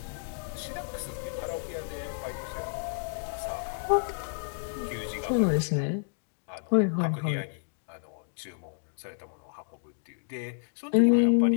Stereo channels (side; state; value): right; silent; digital silence